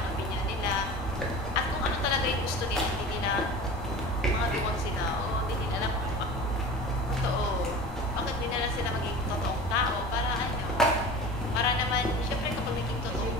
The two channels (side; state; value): both; normal; correlation 0.36